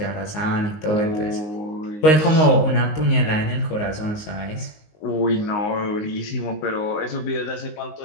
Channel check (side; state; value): right; late; 19 ms